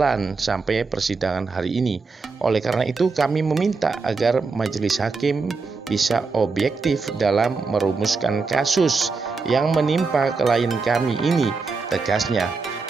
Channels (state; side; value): quieter; left; 4.4 dB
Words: sampai persidangan hari ini. Oleh karena itu kami meminta agar majelis hakim bisa objektif dalam merumuskan kasus yang menimpa klien kami ini, tegasnya.